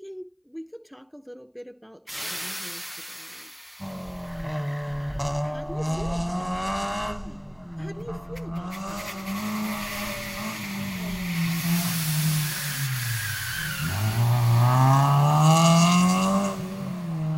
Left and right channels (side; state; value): both; identical; correlation 1.00